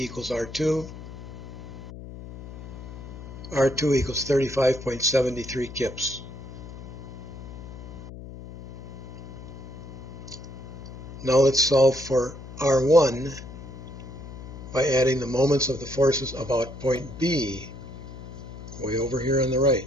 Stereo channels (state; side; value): noise; left; hum, 12 dB below the sound